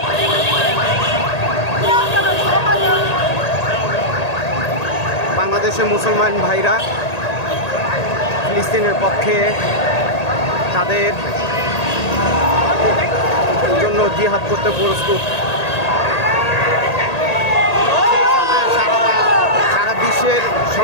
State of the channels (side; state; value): right; late; 1.8 ms